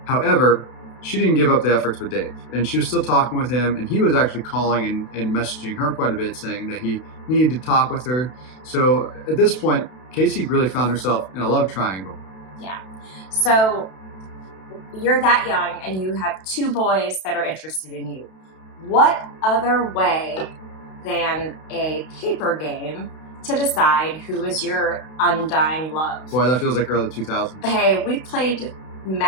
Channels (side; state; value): right; late; 32 ms